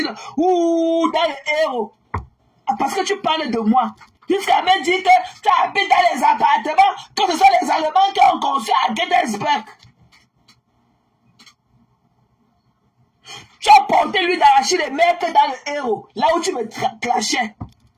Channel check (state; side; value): identical; both; correlation 1.00